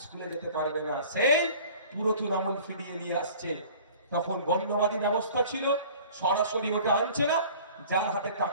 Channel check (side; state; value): both; inverted; correlation -0.46